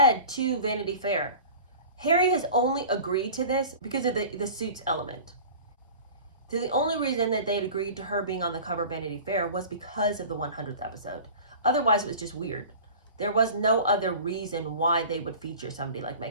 to Vanity Fair, Harry has only agreed to this because of the Suits element. So the only reason that they'd agreed to her being on the cover of Vanity Fair was because of the 100th episode. Otherwise, it was just weird. There was no other reason why they would feature somebody like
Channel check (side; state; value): both; inverted; correlation -0.39